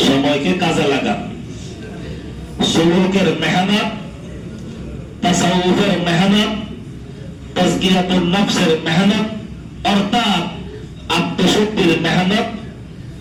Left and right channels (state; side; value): identical; both; correlation 1.00